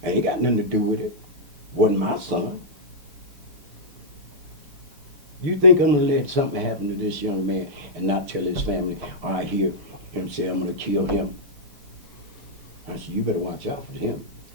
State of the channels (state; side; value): normal; both; correlation -0.08